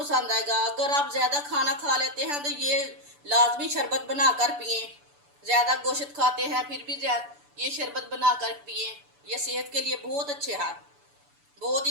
आएगा। अगर आप ज़्यादा खाना खा लेते हैं तो ये लाजमी शरबत बनाकर पिए। ज़्यादा गोश्त खाते हैं फिर भी ये शरबत बनाकर पिए। ये सेहत के लिए बहुत अच्छे है, बहुत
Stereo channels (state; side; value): late; left; 6.9 ms